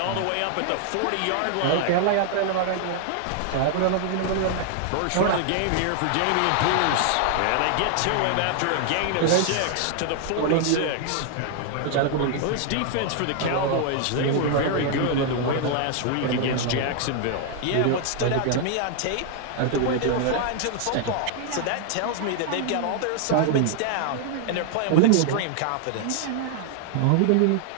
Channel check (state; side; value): different; both; correlation 0.00